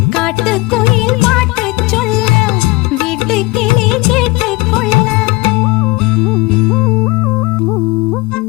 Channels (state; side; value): quieter; right; 23.4 dB